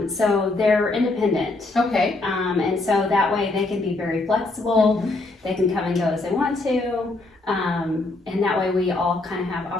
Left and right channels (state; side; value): quieter; right; 3.1 dB